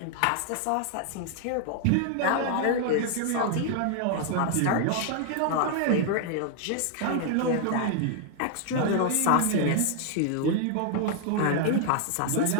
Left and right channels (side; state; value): both; different; correlation 0.00